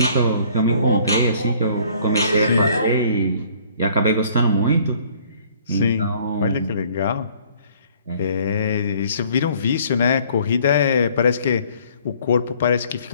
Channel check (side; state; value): both; inverted; correlation -0.57